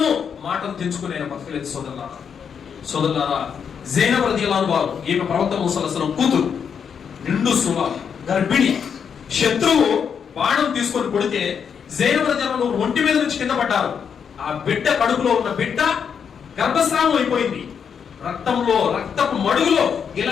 మాటలు తెంచుకునే బతకలేదు. సోదరులారా, జైనబ్ రలియల్లాహు అన్హా వారు, ఈమె ప్రవక్త మూసా అలైహిస్సలాం కూతురు, నిండు సువ, గర్భిణి. శత్రువు బాణం తీసుకొని కొడితే జైనబ్ రలియల్లాహు అన్హా ఒంటి మీద నుంచి కింద పడ్డారు. ఆ బిడ్డ కడుపులో ఉన్న బిడ్డ గర్భస్రావం అయిపోయింది. రక్తంలో, రక్తపు మడుగులో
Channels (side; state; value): right; quieter; 7.1 dB